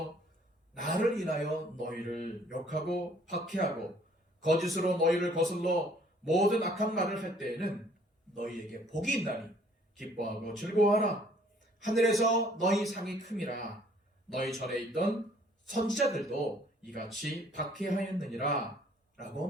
나를 인하여 너희를 욕하고 박해하고 거짓으로 너희를 거슬러 모든 악한 말을 할 때에는 너희에게 복이 있나니 기뻐하고 즐거워하라. 하늘에서 너희 상이 큼이라. 너희 전에 있던 선지자들도 이같이 박해하였느니라 라고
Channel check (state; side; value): normal; both; correlation 0.59